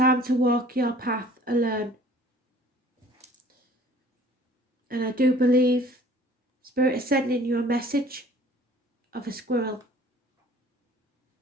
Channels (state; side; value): normal; both; correlation 0.52